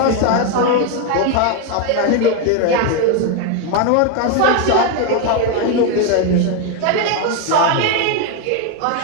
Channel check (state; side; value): different; both; correlation 0.02